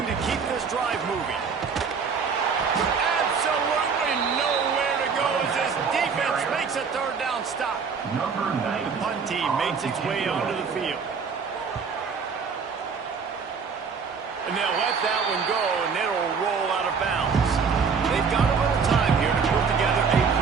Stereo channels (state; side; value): quieter; left; 5.7 dB